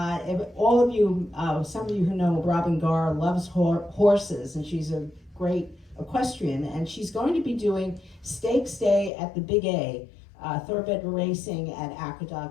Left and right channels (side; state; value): right; drops out; at 9.1 s